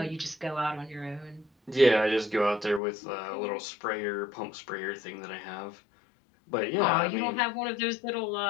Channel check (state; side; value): drops out; right; at 2.8 s